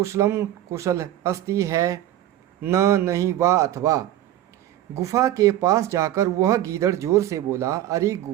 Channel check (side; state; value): left; quieter; 12.9 dB